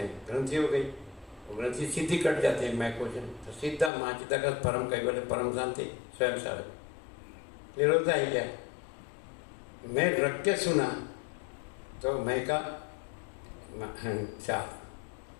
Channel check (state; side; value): drops out; right; at 3.9 s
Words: हैं, ग्रंथि हो गई, वो ग्रंथि सीधी कट जाते हैं, मैं कुछ नहीं, तो सीधा महाचिदाकाश परम कैवल्य परम शांति स्वयं सार। क्लियर होता है क्या? मैं रख के सुना तो मैं का चार,